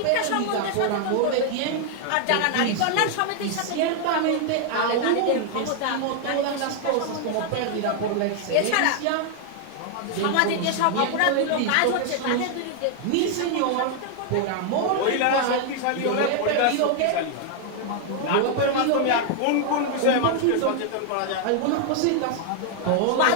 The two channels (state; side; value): different; both; correlation 0.00